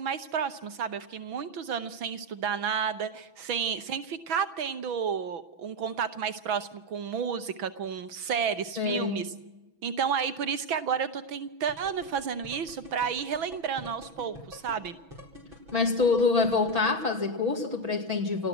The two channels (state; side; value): late; left; 6.1 ms